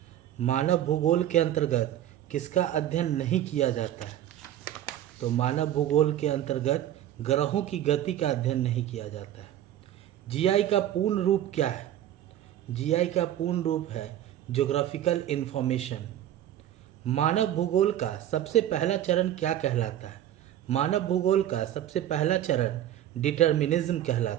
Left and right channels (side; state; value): left; quieter; 11.9 dB